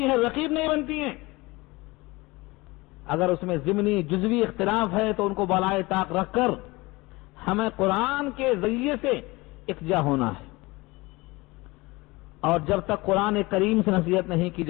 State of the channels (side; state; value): right; quieter; 22.5 dB